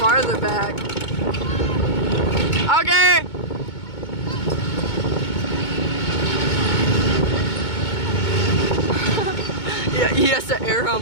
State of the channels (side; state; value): right; late; 2.2 ms